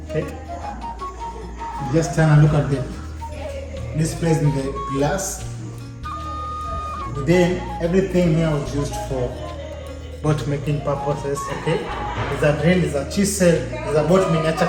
okay. Just turn and look at this place in the glass. Then everything here was used for boat making purposes, okay? There's a drill, there's a chisel, there's a boat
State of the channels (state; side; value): identical; both; correlation 1.00